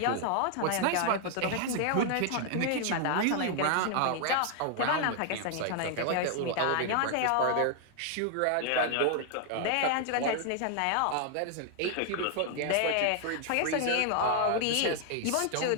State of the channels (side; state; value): both; different; correlation 0.00